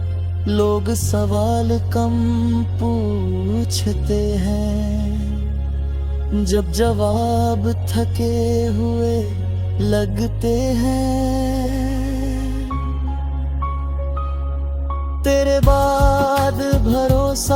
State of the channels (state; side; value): identical; both; correlation 1.00